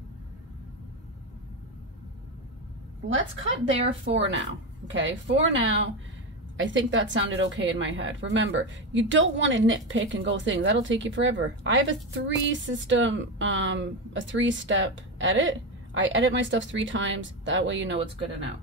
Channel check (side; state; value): both; normal; correlation 0.15